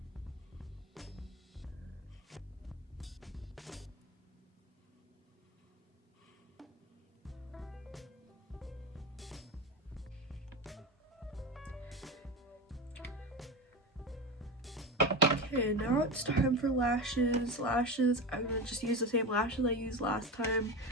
Okay, now it's time for lashes. Lashes, I'm gonna just use the same lashes I used last time.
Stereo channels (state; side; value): normal; both; correlation 0.21